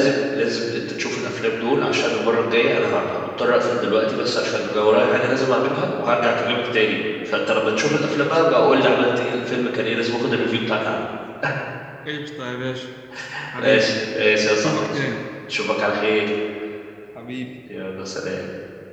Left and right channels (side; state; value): both; identical; correlation 1.00